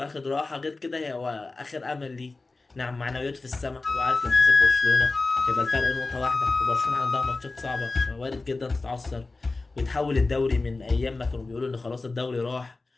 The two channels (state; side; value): quieter; right; 3.5 dB